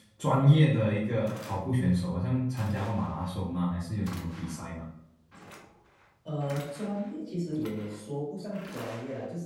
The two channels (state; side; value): identical; both; correlation 1.00